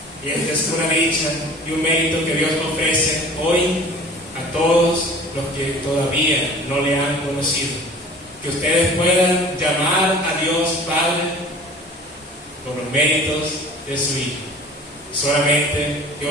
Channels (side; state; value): both; normal; correlation 0.44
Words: Y esta es una dicha y un mérito que Dios ofrece hoy a todos los que todavía no le han conocido. Que ustedes puedan llamar a Dios Padre por los méritos de su Hijo. Solamente que